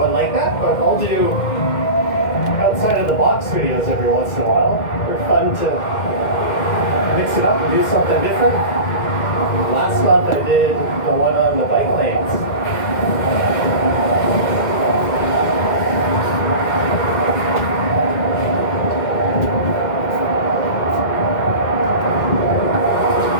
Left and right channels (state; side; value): late; right; 2.1 ms